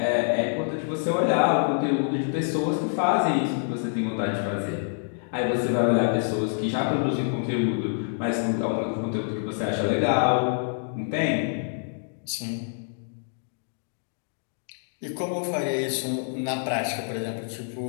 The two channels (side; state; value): right; silent; digital silence